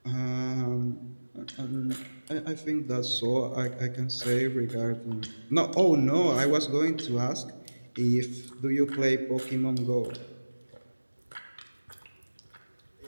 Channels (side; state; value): both; inverted; correlation -1.00